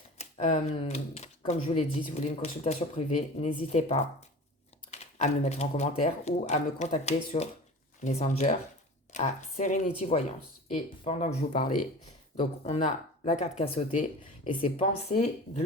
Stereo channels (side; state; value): both; normal; correlation 0.37